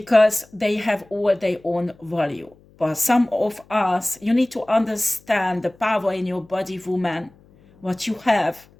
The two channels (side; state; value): left; noise; hum, 28 dB below the sound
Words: they have all their own value. But some of us, you need to understand the power in your body, woman, what you have,